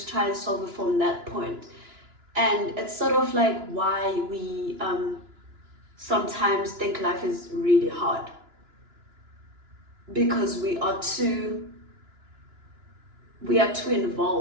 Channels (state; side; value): late; left; 2.9 ms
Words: try and solve it from that point. And it's sort of like why we sometimes think life is really hard, because we are too